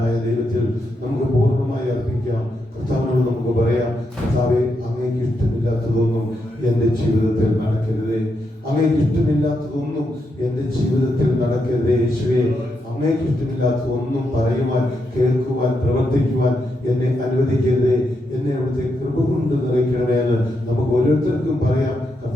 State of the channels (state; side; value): normal; both; correlation 0.82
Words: ദൈവത്തിൽ നമുക്ക് പൂർണ്ണമായി അർപ്പിക്കാം. കർത്താവിനോട് നമുക്ക് പറയാം, കർത്താവേ, അങ്ങേക്ക് ഇഷ്ടമില്ലാത്തതൊന്നും എൻ്റെ ജീവിതത്തിൽ നടക്കരുതേ, അങ്ങേക്ക് ഇഷ്ടമില്ലാത്തതൊന്നും എൻ്റെ ജീവിതത്തിൽ നടക്കരുതേ. യേശുവേ, അങ്ങേക്ക് ഇഷ്ടമില്ലാത്തതൊന്നും പറയുവാൻ, കേൾക്കുവാൻ, പ്രവർത്തിക്കുവാൻ എന്നെ അനുവദിക്കരുതേ. എന്നെ അവിടുത്തെ കൃപ കൊണ്ട് നിറയ്ക്കണമേ എന്ന് നമുക്ക് ഓരോരുത്തർക്കും പറയാം.